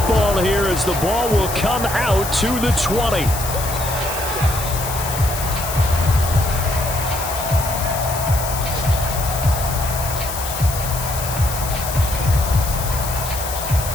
here as the ball will come out to the 20.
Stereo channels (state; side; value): noise; left; hiss, 7 dB below the sound